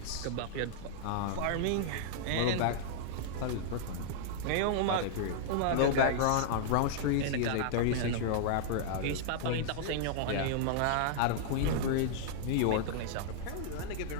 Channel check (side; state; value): both; different; correlation -0.01